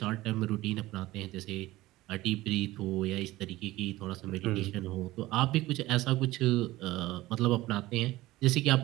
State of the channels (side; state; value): left; quieter; 17.8 dB